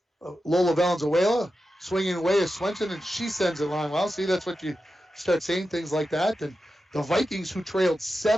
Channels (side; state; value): both; normal; correlation 0.91